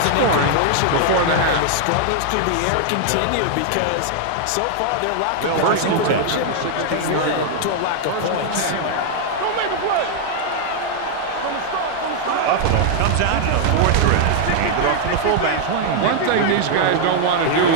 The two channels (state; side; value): different; both; correlation 0.00